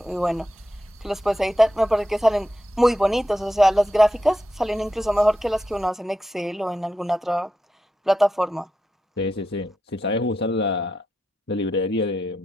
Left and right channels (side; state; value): both; normal; correlation 0.87